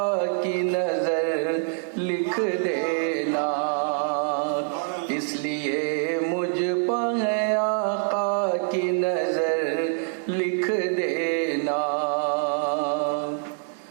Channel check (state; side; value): silent; left; 62 dB below the other